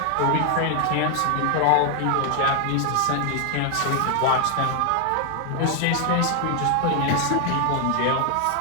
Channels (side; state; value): both; different; correlation 0.00